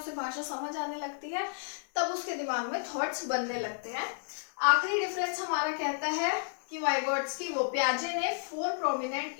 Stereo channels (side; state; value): right; silent; 57 dB below the other